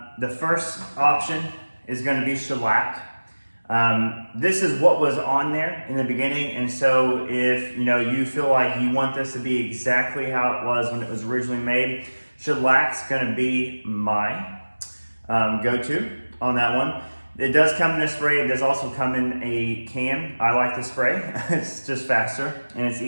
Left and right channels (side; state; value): both; inverted; correlation -1.00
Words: the first option is going to be shellac. This is what was on there in the beginning, and so if you feel like you want this to be exactly how it was when it was originally made, shellac's going to be my go-to on that one. It does come in a spray. It does also come in a can. I like the spray. It's just faster and it's